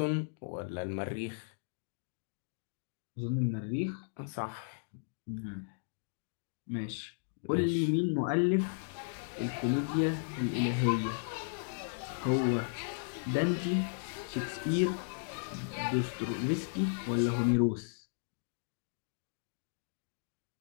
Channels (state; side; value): silent; right; digital silence